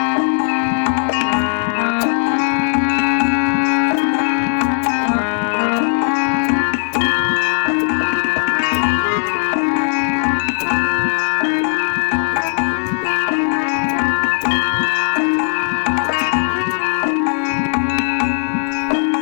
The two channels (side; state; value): right; silent; digital silence